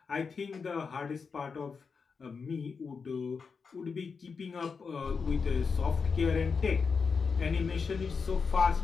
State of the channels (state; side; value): quieter; right; 5.3 dB